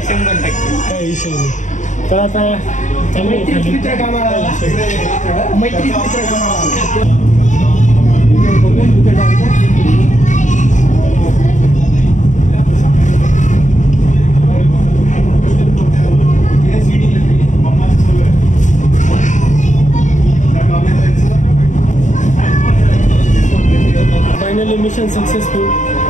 काय विषय नाही. तर आता फायनली मिशन सक्सेसफुल.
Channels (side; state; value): right; late; 0.36 ms